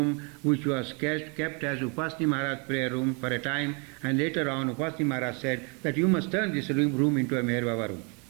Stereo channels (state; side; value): quieter; left; 34.5 dB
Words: which was kept as Upasni Maharaj prayer room for a time, and later on Upasni Maharaj said that you must turn this room into a Meher Baba room.